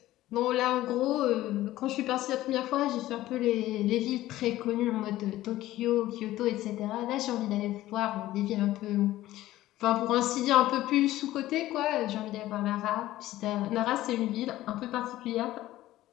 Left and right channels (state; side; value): quieter; right; 15.4 dB